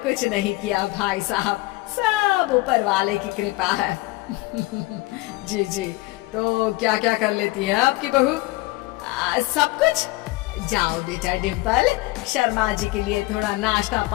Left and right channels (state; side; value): quieter; right; 21.0 dB